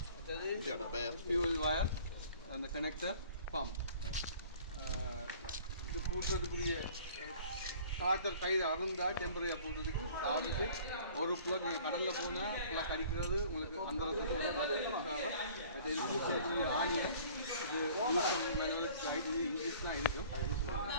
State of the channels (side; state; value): both; inverted; correlation -0.50